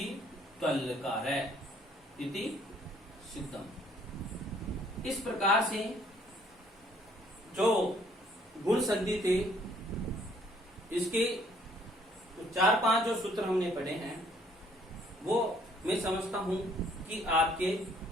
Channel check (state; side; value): normal; both; correlation 0.62